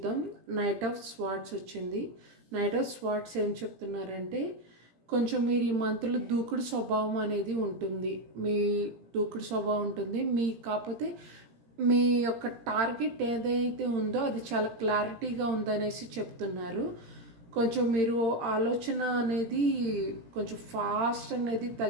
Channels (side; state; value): left; late; 17 ms